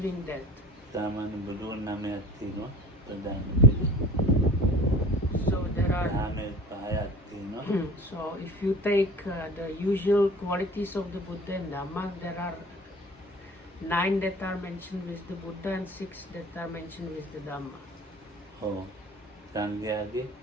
that. So there are. So if you take the usual qualities of the Buddha and Dhamma, there are 9 that are mentioned with the Buddha and 6 that are mentioned with the Dhamma. Oh, Sangyadi,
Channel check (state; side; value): normal; both; correlation 0.42